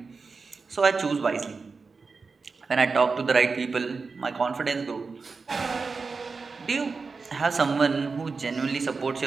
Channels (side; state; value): left; quieter; 4.5 dB